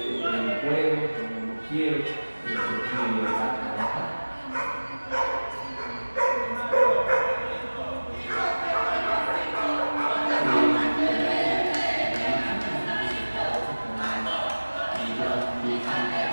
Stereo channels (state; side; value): inverted; both; correlation -1.00